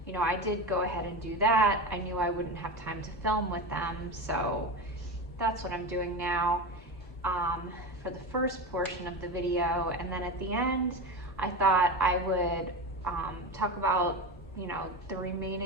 did go ahead and do that. I knew I wouldn't have time to film with them, so that's what I'm doing now for the first portion of the video. And then at the end, I thought I would talk about the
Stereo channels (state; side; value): normal; both; correlation 0.23